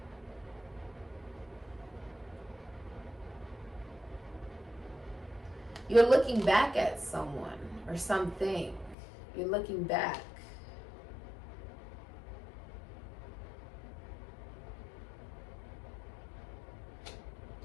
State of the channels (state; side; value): drops out; right; at 9.0 s